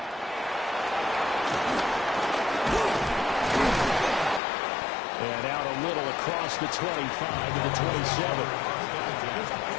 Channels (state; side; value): drops out; right; at 4.4 s